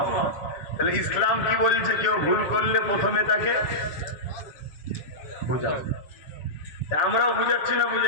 তাহলে ইসলাম কি বলছে, কেউ ভুল করলে প্রথমে তাকে বুঝাও। আমরাও বুঝাচ্ছি না,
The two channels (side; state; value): right; late; 7.4 ms